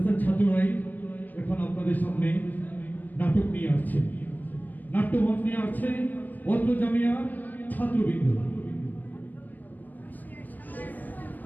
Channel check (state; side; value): late; right; 0.083 ms